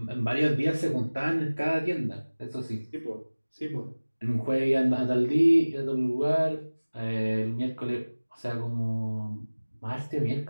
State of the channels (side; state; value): both; inverted; correlation -1.00